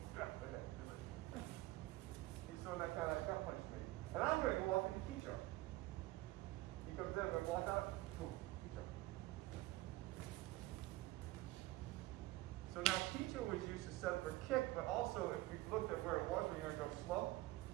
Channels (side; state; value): left; quieter; 18.6 dB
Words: He's throwing that kind of gut punch to me. And I'm going to go off into Hicho. He comes in, I'm going to block out. Boom. Hicho. So now Hicho was used to set up a kick, but also if we looked at where it was, we're going to go slow.